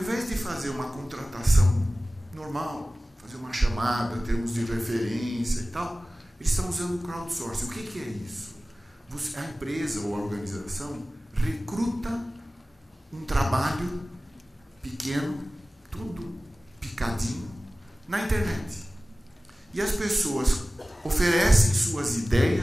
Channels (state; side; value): normal; both; correlation 0.97